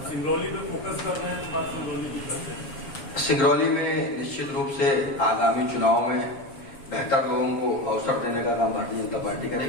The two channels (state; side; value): late; right; 7.4 ms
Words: सिंगरौली पे फोकस कर रहे हैं तो बात सिंगरौली की करते हैं। सिंगरौली में निश्चित रूप से आगामी चुनाव में बेहतर लोगों को अवसर देने का काम भारतीय जनता पार्टी